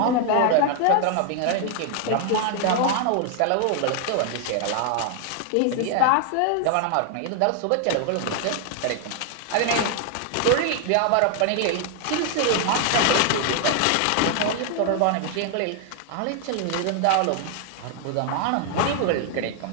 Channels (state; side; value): different; both; correlation 0.00